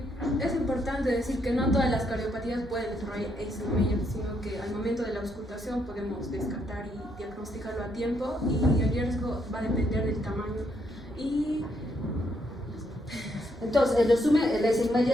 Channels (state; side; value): normal; both; correlation 0.75